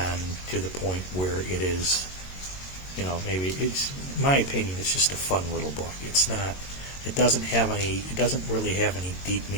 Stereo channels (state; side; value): late; right; 22 ms